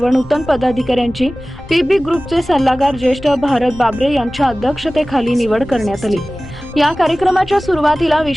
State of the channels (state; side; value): noise; left; rumble, 19 dB below the sound